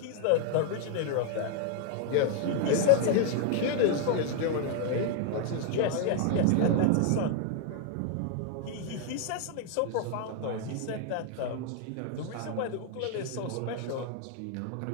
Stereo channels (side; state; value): both; different; correlation 0.00